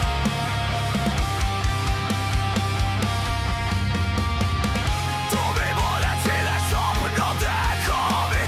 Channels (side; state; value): both; identical; correlation 1.00